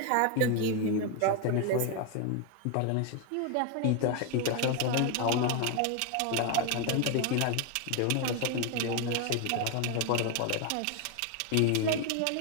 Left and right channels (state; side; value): different; both; correlation 0.01